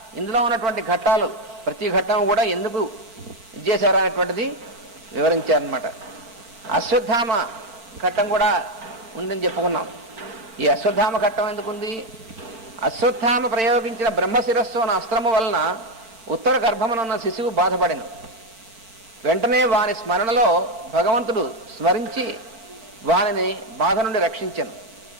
ఇందులో ఉన్నటువంటి ఘట్టాలు ప్రతి ఘట్టం కూడా ఎందుకు ఇచ్చేశారు అనేటువంటిది వివరించారనమాట. అశ్వత్థామ ఘట్టం కూడా ఉందని చెప్పుకున్నాం. ఈ అశ్వత్థామ ఘట్టం ఎందుకుంది, అశ్వత్థామ ప్రయోగించిన బ్రహ్మశిరస్సు అన్న అస్త్రము వలన ఉత్తర గర్భమునున్న శిశువు బాధపడిన వెంటనే వాని స్మరణలో భగవంతుడు స్మరించి వానిని బాధ నుండి రక్షించను.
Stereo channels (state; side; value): late; left; 4.5 ms